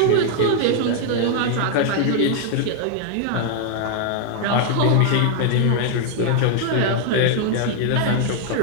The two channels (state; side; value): different; both; correlation 0.00